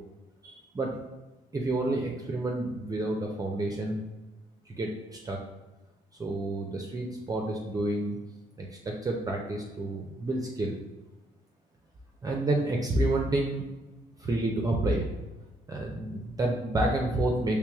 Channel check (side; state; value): both; normal; correlation 0.73